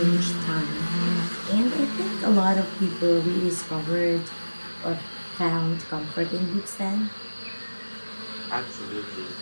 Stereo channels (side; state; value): both; inverted; correlation -1.00